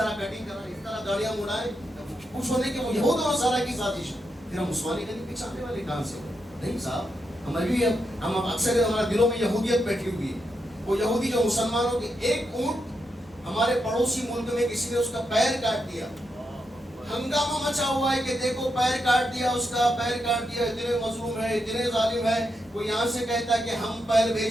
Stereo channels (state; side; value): normal; both; correlation 0.84